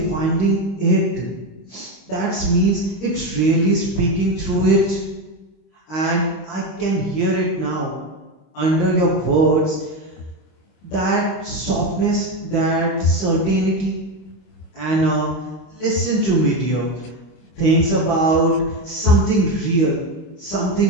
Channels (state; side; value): late; right; 25 ms